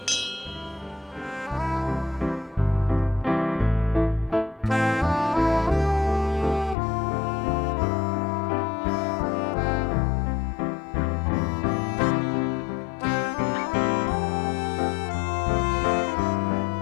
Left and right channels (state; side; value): drops out; right; at 6.8 s